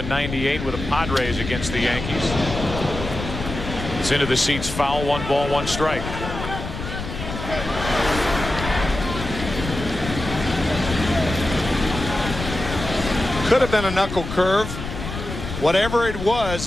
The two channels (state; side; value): noise; left; rumble, 7 dB below the sound